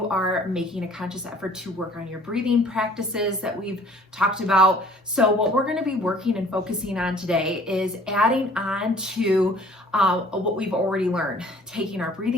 are making a conscious effort to work on your breathing practices that we've talked about. So what we're going to be working and focusing on today is adding on to what we've already learned, taking our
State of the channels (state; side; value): normal; both; correlation 0.53